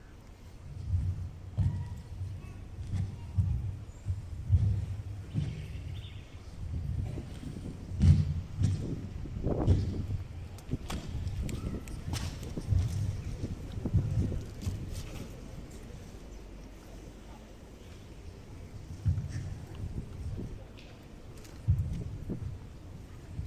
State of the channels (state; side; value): identical; both; correlation 1.00